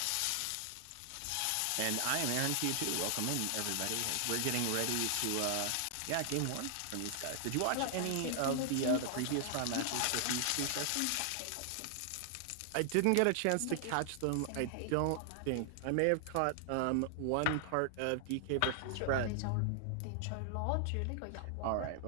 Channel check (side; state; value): both; different; correlation 0.00